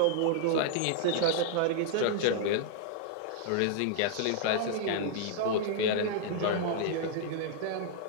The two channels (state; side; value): different; both; correlation -0.01